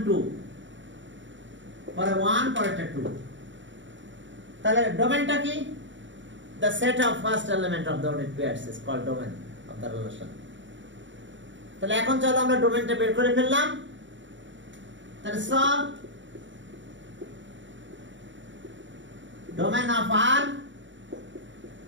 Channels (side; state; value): left; late; 0.54 ms